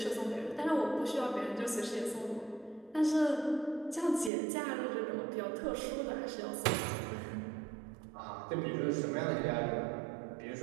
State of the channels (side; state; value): left; drops out; at 4.3 s